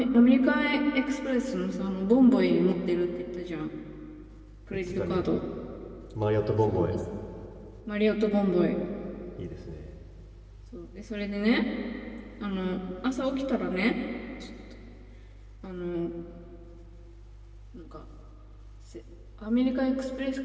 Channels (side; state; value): both; identical; correlation 1.00